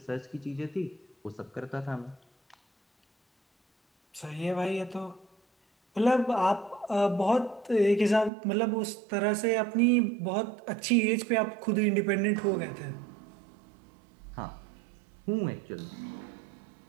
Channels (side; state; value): left; drops out; at 8.3 s